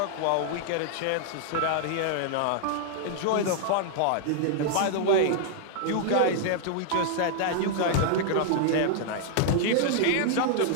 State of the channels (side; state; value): both; different; correlation -0.01